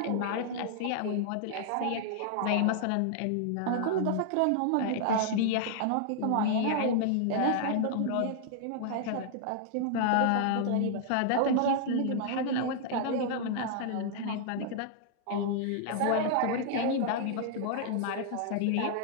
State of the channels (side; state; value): both; different; correlation -0.01